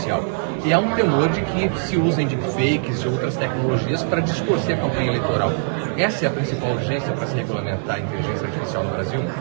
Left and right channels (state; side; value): silent; left; 60 dB below the other